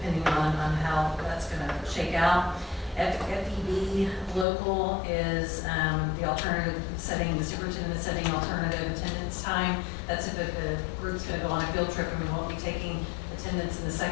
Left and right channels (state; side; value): drops out; right; at 4.5 s